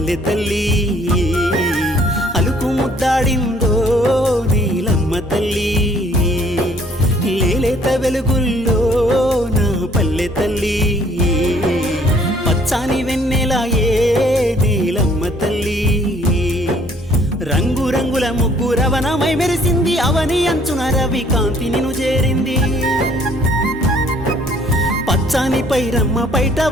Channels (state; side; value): normal; both; correlation 0.61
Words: తల్లి అలుకు ముద్దాడిందో నీలమ్మ తల్లి లేలేత వెలుగుల్లో నా పల్లె తల్లి పచ్చాని వెన్నెలాయే నీలమ్మ తల్లి రంగు రంగుల ముగ్గు రవణమై మెరిసింది అవని అంచున రవి కాంతి నిను చేరింది పచ్చాని పైరమ్మ పైట